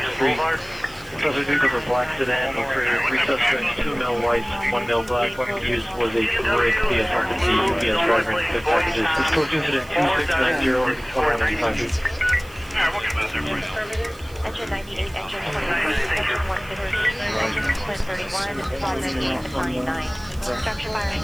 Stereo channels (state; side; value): noise; right; hiss, 23 dB below the sound